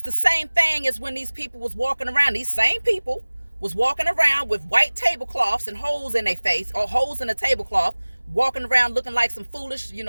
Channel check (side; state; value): both; inverted; correlation -1.00